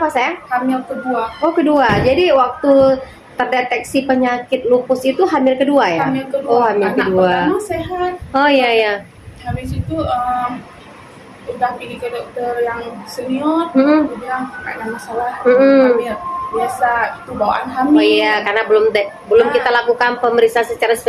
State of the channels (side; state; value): both; identical; correlation 1.00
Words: sayang? Hamil kedua. Oh kedua. Jadi waktu terdeteksi penyakit lupus itu hamil kedua ya? Hamil kedua. Oh hamil Anak kedua. pertama sehat. Oh iya. Habis itu udah pergi ke dokter yang senior, dia bilang nggak ada masalah hamil. Biasa itu bawaan hamil. Oh iya, karena belum kita lakukan pemeriksaan secara